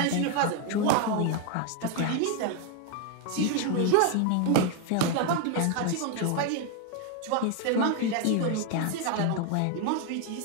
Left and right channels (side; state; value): both; different; correlation 0.01